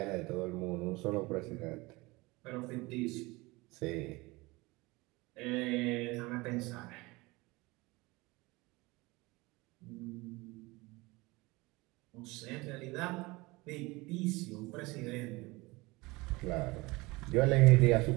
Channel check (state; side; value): quieter; left; 22.9 dB